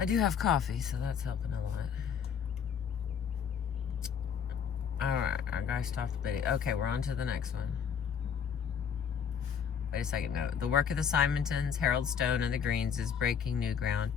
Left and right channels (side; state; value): right; quieter; 7.4 dB